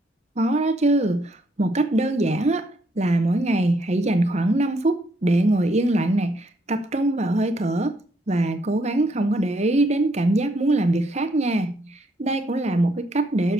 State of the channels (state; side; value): normal; both; correlation 0.72